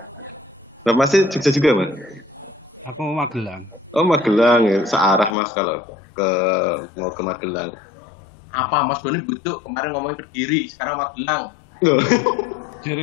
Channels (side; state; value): right; drops out; at 5.4 s